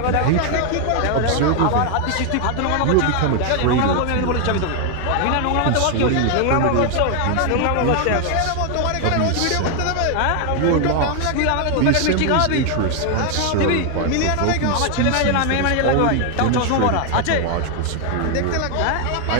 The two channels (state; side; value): different; both; correlation 0.00